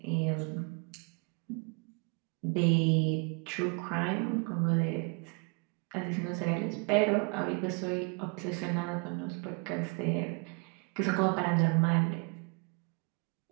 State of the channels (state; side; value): quieter; left; 34.7 dB